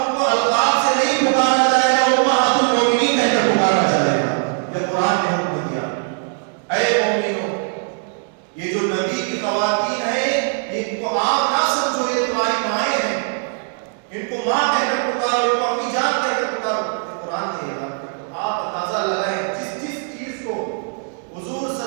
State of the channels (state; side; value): silent; left; 57 dB below the other